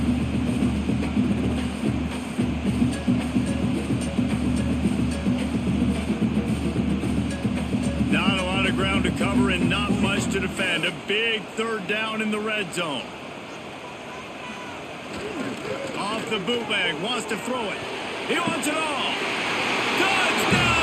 Not a lot of ground to cover and not much to defend. A big 3rd down in the red zone. Off the bootleg, wants to throw it. He wants it all.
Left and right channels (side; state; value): both; identical; correlation 1.00